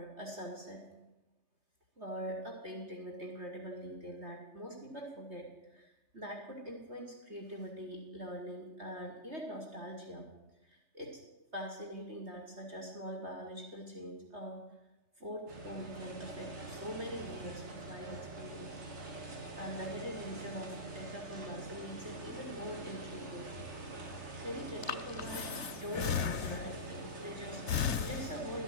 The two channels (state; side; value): late; left; 3.3 ms